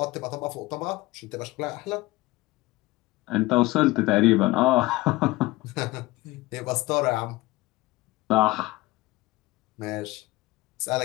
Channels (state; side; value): quieter; right; 20.1 dB